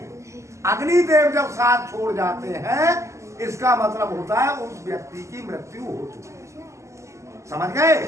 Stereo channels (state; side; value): late; left; 0.14 ms